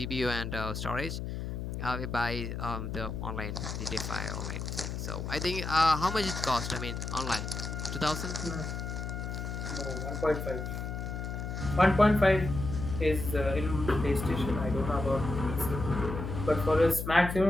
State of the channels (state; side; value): noise; left; hum, 5 dB below the sound